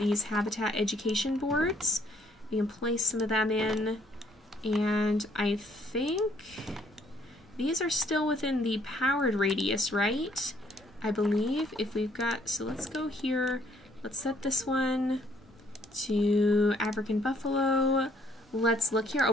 habitat education boards. We can place some of them in. And I think these are still within the powered radius, right? I believe if we've got, so let's go here. Let's set this one to African buffalo. Let's look here. Oh,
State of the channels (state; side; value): normal; both; correlation 0.65